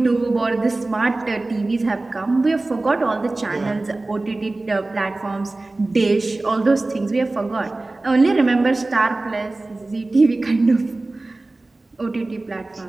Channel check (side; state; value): left; quieter; 3.0 dB